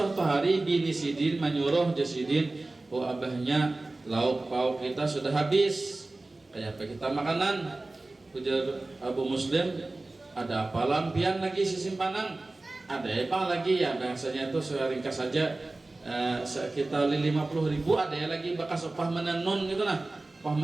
hari bini Sidin menyuruh Jasidin, oh abahnya lauk pauk kita sudah habis, kayak apa kita makanan? Ujar Abu Muslim, ada apa lampian lagi simpanan? Ada apa lagi ya? Biasanya itu saya ringkas saja sekitar 50.000, ada ya lagi bekas upah menenun gitu nah. Upah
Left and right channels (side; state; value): left; quieter; 3.0 dB